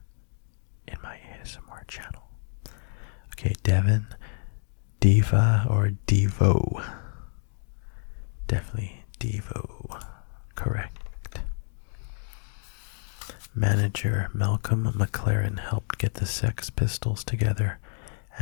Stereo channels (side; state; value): right; silent; 59 dB below the other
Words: in my ASMR channel. Okay, Devin, Diva, or Devo? Definitely Devo. Correct. Manager Malcolm McLaren helped get the Sex Pistols together